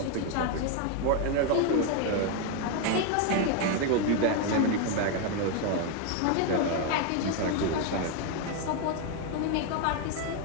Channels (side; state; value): both; different; correlation 0.01